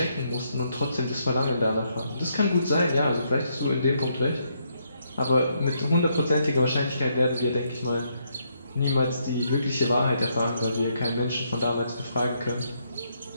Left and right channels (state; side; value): inverted; both; correlation -0.75